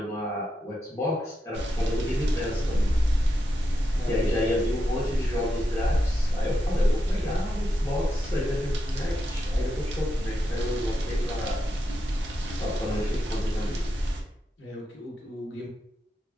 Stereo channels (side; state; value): both; normal; correlation 0.86